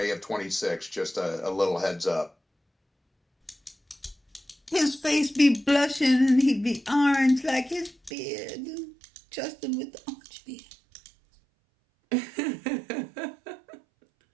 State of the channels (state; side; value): drops out; left; at 8.1 s